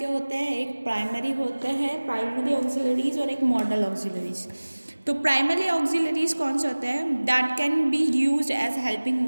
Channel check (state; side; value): inverted; both; correlation -1.00